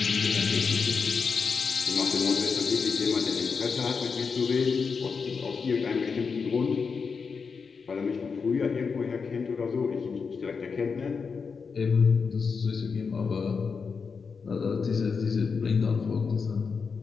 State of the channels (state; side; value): quieter; right; 5.4 dB